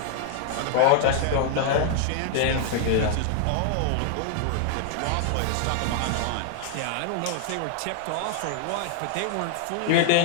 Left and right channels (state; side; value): different; both; correlation 0.00